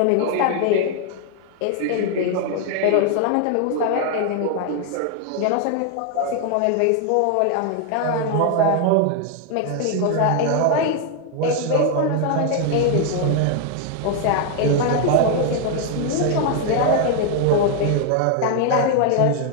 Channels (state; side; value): different; both; correlation 0.00